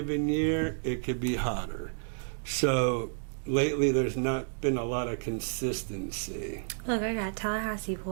year, it could be hotter. So lately, there's not been a lot of consistency. Look, I got Tallahassee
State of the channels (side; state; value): left; silent; digital silence